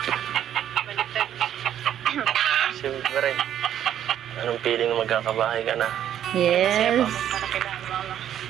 Baliktad. Siyempre. Anong feeling na magkakabahay ka na? Masaya po Yes. ako para kailangan mama.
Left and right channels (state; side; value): quieter; left; 10.6 dB